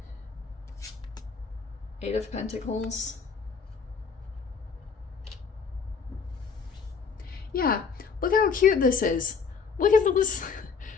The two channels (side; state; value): right; quieter; 5.7 dB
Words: Eight of Pentacles. Yeah, look how cute this is. Look at this.